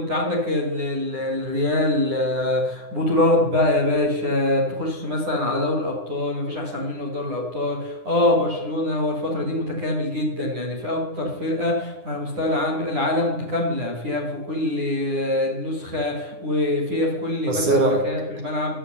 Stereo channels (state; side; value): late; left; 9.8 ms